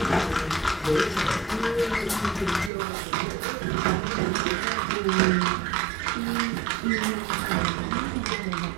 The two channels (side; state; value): left; drops out; at 2.7 s